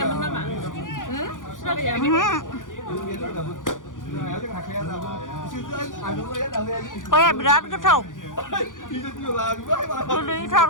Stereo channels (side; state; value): right; late; 0.88 ms